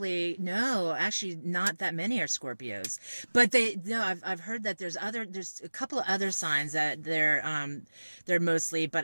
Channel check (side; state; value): both; inverted; correlation -1.00